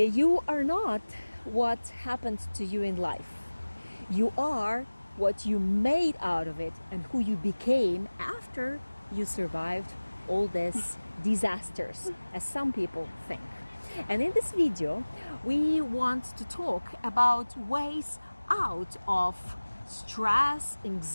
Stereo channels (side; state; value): both; inverted; correlation -1.00